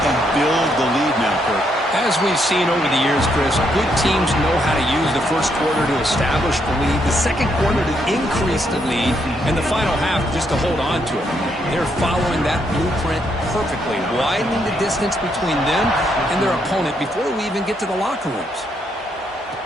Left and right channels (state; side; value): normal; both; correlation 0.76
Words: and build the lead now, Kurt. As we've seen over the years, Chris, good teams know how to use the first quarter to establish the lead, the second quarter to increase the lead, and the final half just to hold on to it. They're following that blueprint perfectly, widening the distance between them and their opponent before we even get to the locker rooms.